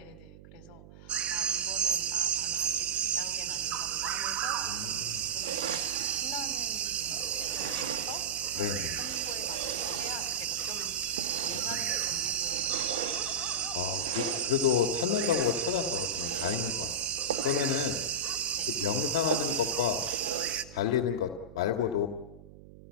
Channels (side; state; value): right; noise; hum, 19 dB below the sound